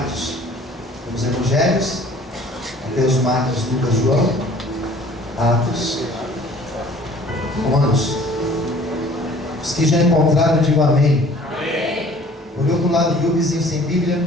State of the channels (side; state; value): both; normal; correlation 0.52